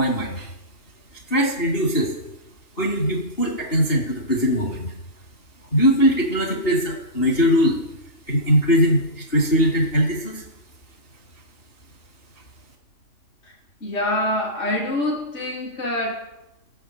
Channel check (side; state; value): right; late; 2.8 ms